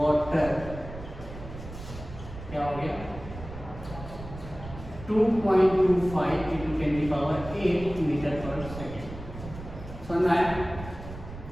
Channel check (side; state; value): right; noise; rumble, 12 dB below the sound